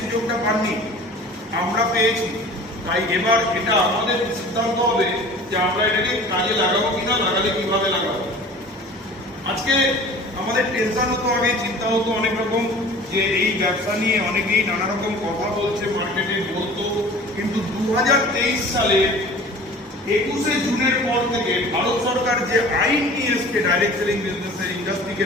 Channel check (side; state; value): both; normal; correlation 0.43